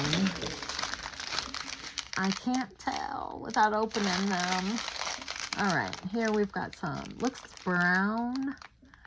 I can't tell without opening them. All right, here we've got some. Looks brown.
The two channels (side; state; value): both; identical; correlation 1.00